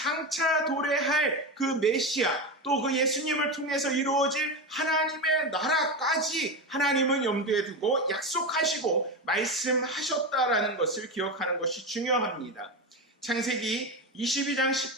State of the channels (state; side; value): normal; both; correlation 0.18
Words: 도래할 그 메시아, 또 그 예수님을 통해서 이루어질 하나님의 나라까지 하나님은 염두에 두고 약속하시고 말씀하셨다라는 것을 기억하는 것이 중요합니다. 창세기 22장